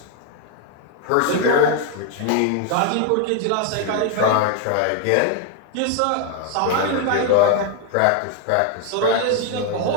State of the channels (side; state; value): both; different; correlation 0.00